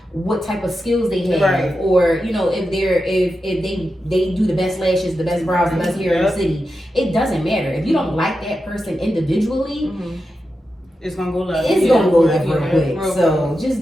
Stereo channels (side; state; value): both; normal; correlation 0.89